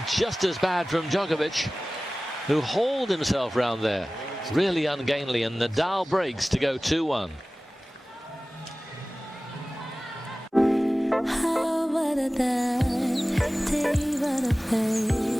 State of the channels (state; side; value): normal; both; correlation 0.97